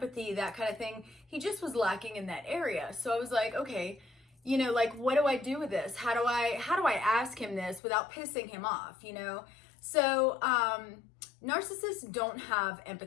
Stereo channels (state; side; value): drops out; right; at 7.8 s